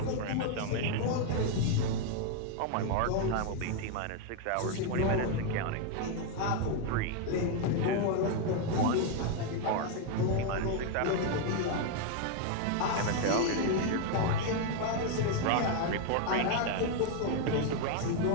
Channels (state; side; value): different; both; correlation 0.01